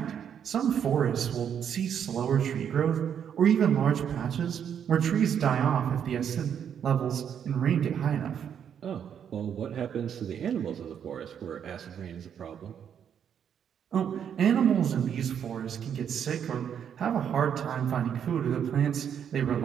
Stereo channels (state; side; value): quieter; left; 8.4 dB